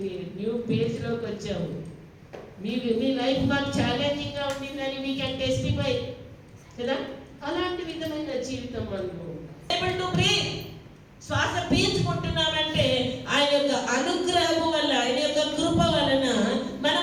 న్యూ పేజ్ లోకి వచ్చాము. మీ లైఫ్ మాకు ఛాలెంజింగ్ గా ఉండిందని వీ కెన్ టెస్టిఫై కదా. అలాంటి విధమైన జీవితం మనము ఏబుల్ టు బ్రీత్, శ్వాస పీల్చుకుంటున్నామంటే ఆయన యొక్క అనుగ్రహము వల్ల, ఆయన యొక్క కృప వలన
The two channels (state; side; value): identical; both; correlation 1.00